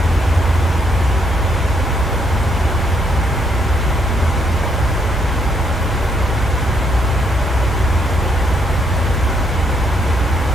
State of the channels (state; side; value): normal; both; correlation 0.73